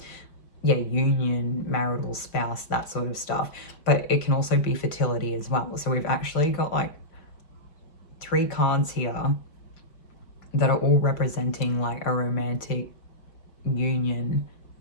union, marital, spouse, that sort of stuff. But it can also be fertility as well. So we've actually got like 3 cards here that are all representing like a romantic union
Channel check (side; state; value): right; late; 4.9 ms